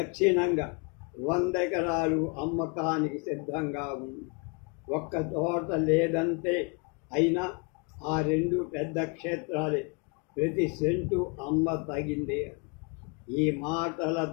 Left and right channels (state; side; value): quieter; right; 35.0 dB